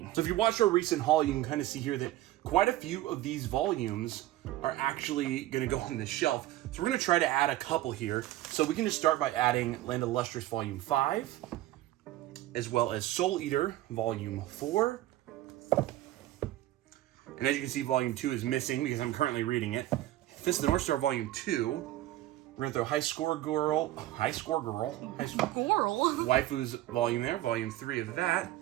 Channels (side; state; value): left; quieter; 15.2 dB